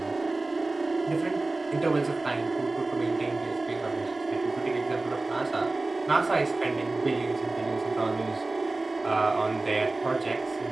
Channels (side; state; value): left; quieter; 3.2 dB